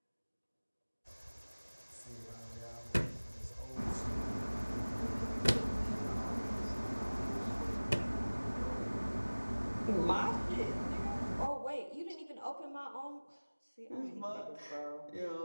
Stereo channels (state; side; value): inverted; both; correlation -1.00